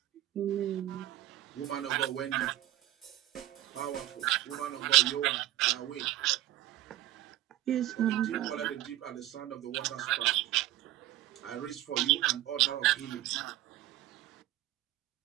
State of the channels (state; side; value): quieter; left; 14.8 dB